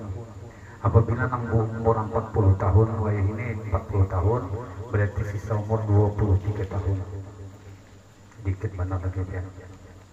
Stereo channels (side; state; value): both; identical; correlation 1.00